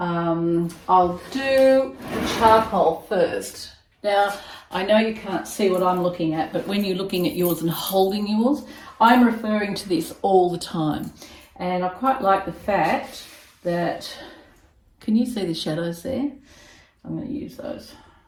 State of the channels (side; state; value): both; identical; correlation 1.00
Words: do the charcoal first. Now, I know you can't see what I'm looking at, but when you're looking at yours and holding yours, I'm referring to this all the time. And I quite like the fact that, can you see the shadows there? I'm going to use those.